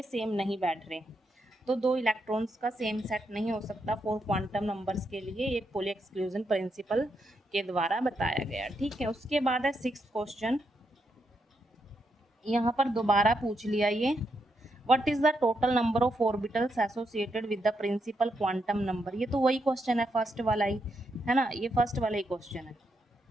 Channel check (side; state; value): both; normal; correlation 0.81